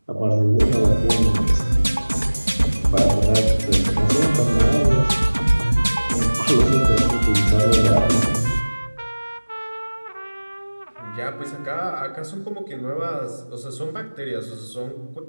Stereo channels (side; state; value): both; inverted; correlation -1.00